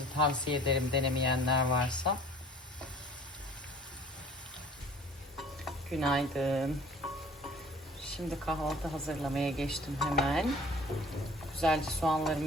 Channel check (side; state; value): both; normal; correlation 0.49